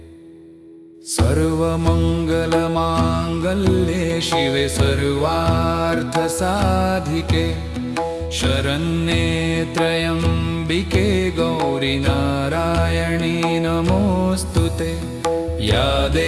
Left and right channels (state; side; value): identical; both; correlation 1.00